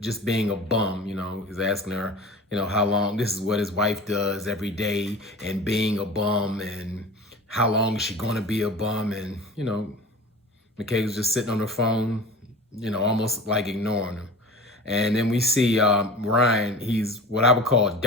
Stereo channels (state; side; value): normal; both; correlation 0.36